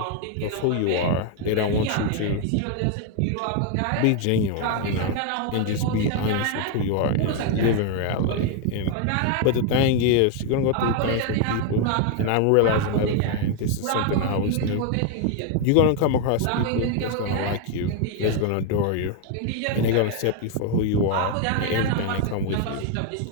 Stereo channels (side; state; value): both; different; correlation 0.01